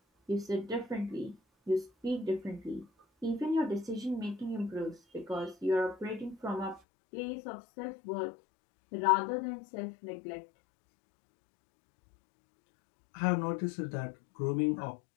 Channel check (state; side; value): drops out; right; at 6.8 s